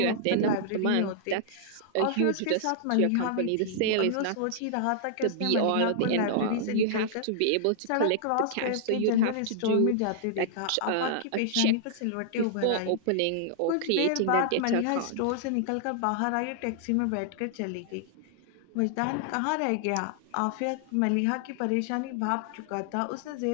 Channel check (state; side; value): different; both; correlation -0.01